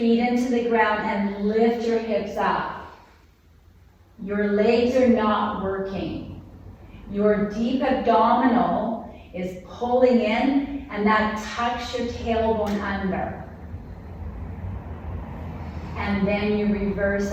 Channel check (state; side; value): identical; both; correlation 1.00